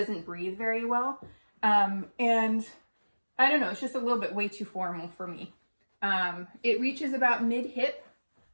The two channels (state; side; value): inverted; both; correlation -1.00